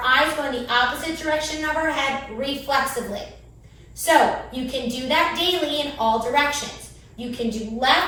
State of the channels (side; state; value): both; identical; correlation 1.00